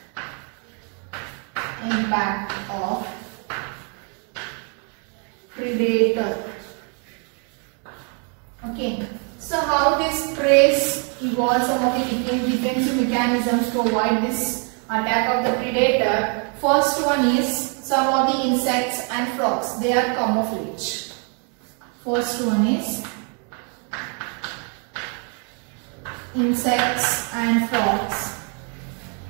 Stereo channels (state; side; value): quieter; left; 39.1 dB